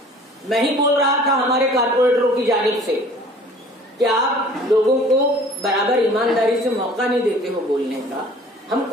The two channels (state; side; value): normal; both; correlation 0.49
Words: میں ہی بول رہا تھا ہمارے کارپوریٹروں کی جانب سے کہ آپ لوگوں کو برابر ایمانداری سے موقع نہیں دیتے ہو بولنے کا، ہم